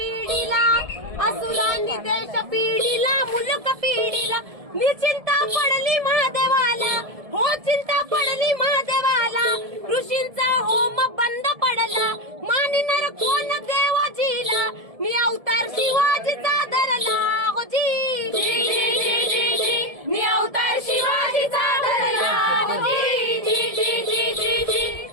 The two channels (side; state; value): left; late; 1.7 ms